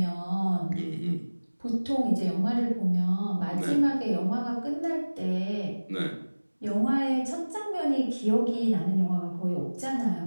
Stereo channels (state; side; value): inverted; both; correlation -1.00